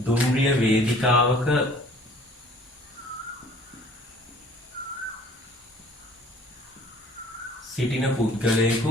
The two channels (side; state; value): both; normal; correlation 0.52